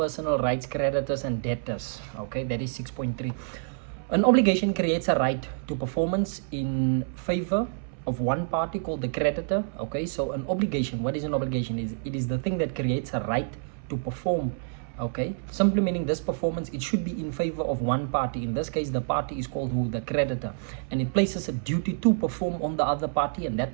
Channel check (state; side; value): silent; left; 60 dB below the other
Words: rights, creditors, and debtors. Okay, that is 6.3. An obligation creates a right to performance in favor of one party called the creditor. Okay, so an obligation, what is an obligation? It is the thing that creates a right to perform. Okay, simply meaning this performance, it should be in favor of one party. In this case, the party is called who? The creditor, and it places a duty to perform on the other party, and